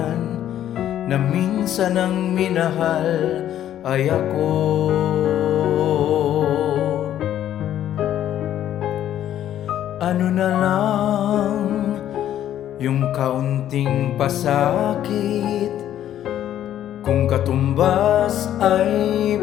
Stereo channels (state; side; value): quieter; right; 11.4 dB